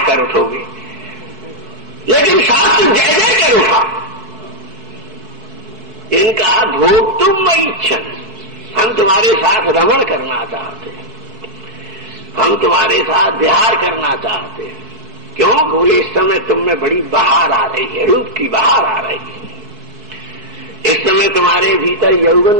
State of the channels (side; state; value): left; late; 4.6 ms